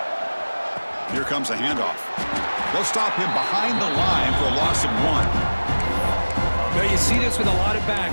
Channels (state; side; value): inverted; both; correlation -1.00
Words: Here comes a handoff. They'll stop him behind the line for a loss of 1. Now you see this with a lot of